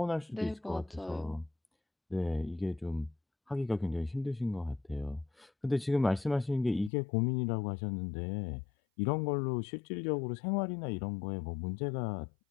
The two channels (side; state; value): right; drops out; at 6.9 s